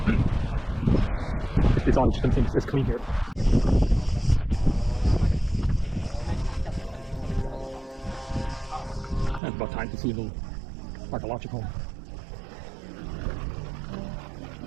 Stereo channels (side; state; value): left; drops out; at 9.4 s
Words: It's on, it's clean here. And it's about time to see a little archaeological.